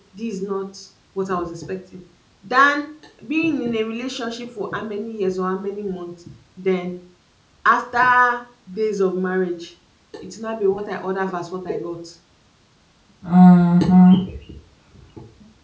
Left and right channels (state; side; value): identical; both; correlation 1.00